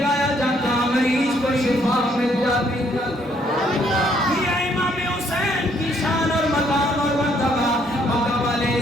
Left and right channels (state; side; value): normal; both; correlation 0.68